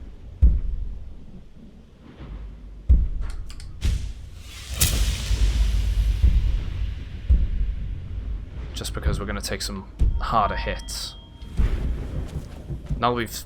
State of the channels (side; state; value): both; identical; correlation 1.00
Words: Just because we're going to take some harder hits. Now that we've